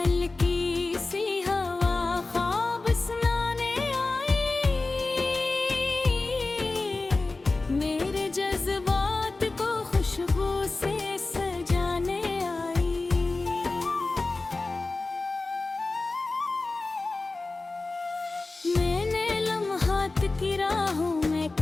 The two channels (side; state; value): right; quieter; 3.4 dB